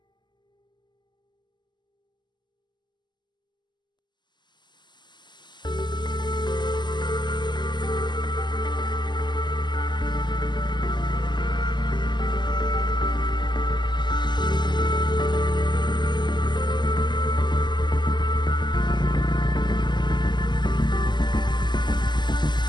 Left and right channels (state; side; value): late; right; 0.21 ms